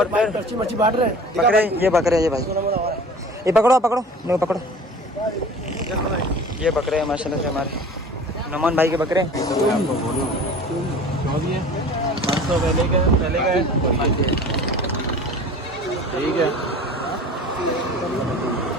फिर अच्छी मच्छी बांट रहे हैं बकरे। ये बकरे ये भाई ये पकड़ो पकड़ो नहीं पकड़ो। ये बकरे हैं माशाल्लाह से हमारे नमन भाई के बकरे। ठीक है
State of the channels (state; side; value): normal; both; correlation 0.42